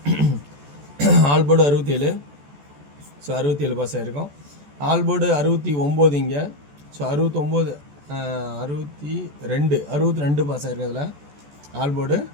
ஆல் போர்டு 67, ஸோ 67 பாஸ் ஆகிருக்கும். ஆல் போர்டு 69 இங்கே, ஸோ 62 பாஸ் ஆகிருக்கும். அதில் ஆல் போர்டு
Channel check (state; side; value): late; left; 14 ms